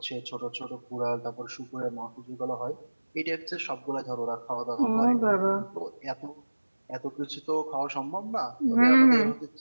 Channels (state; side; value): inverted; both; correlation -1.00